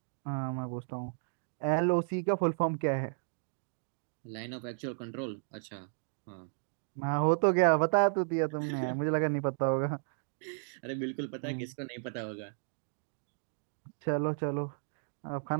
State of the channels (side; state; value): left; silent; digital silence